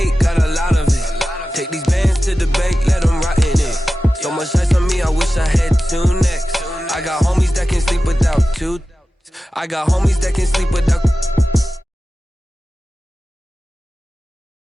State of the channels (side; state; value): both; normal; correlation 0.94